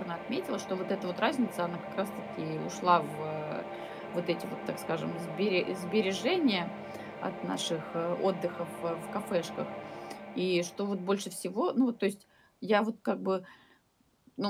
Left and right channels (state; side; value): identical; both; correlation 1.00